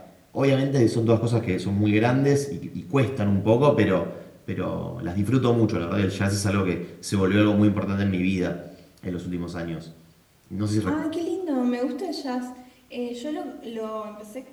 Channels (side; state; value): both; identical; correlation 1.00